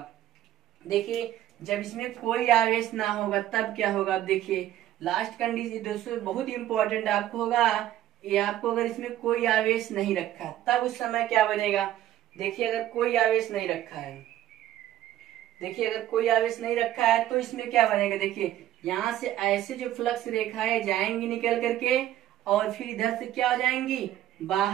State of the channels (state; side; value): quieter; left; 12.9 dB